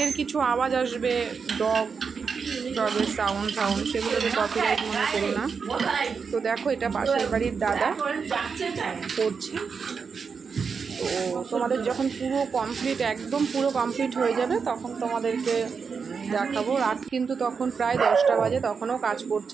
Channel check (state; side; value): quieter; left; 5.6 dB